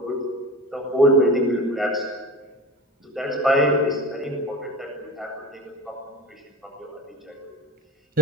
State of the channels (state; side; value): normal; both; correlation 0.31